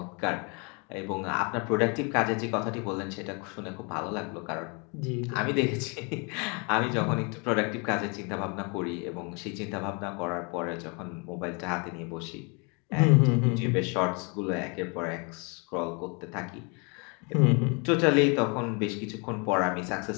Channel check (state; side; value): quieter; right; 33.0 dB